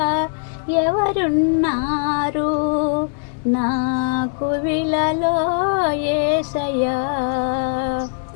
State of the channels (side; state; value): right; silent; 66 dB below the other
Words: ఎవరున్నారు నాకు విలలో యేసయ్యా